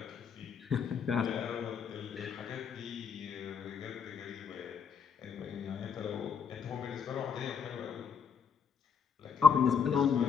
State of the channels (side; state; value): right; quieter; 6.5 dB